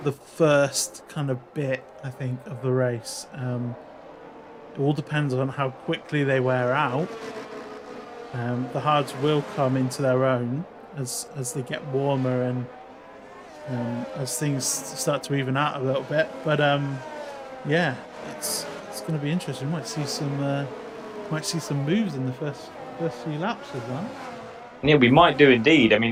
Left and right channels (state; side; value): identical; both; correlation 1.00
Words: the first kind of bit, I think, of the race. It all depends on how quickly they wear out. The hards will come into their own as they get warmer and as things start to even out a little bit. But yeah, it's going to be interesting. Might see some moves in the first few laps of that. Yeah, we might do indeed. I